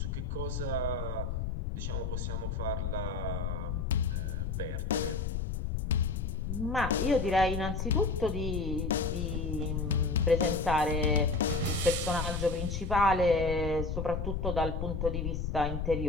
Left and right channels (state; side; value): noise; left; rumble, 2 dB below the sound